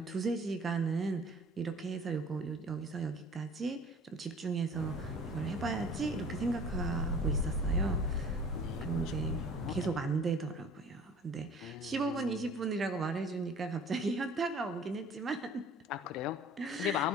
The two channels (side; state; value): both; normal; correlation 0.48